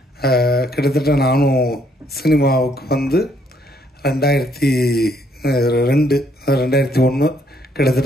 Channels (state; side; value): normal; both; correlation 0.69